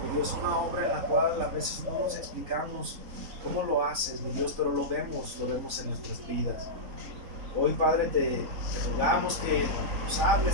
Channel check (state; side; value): late; left; 4.0 ms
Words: mi Dios, una obra en la cual a veces no nos explicamos cómo lo haces, mi Dios, pero lo vemos en nuestras vidas. Hoy, Padre, te rogamos que nos